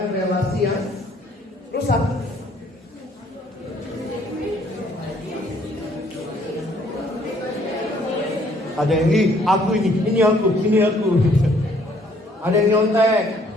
relasi yang rusak. Ada yang aku ini aku. Ada yang nyontek.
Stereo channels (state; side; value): normal; both; correlation 0.63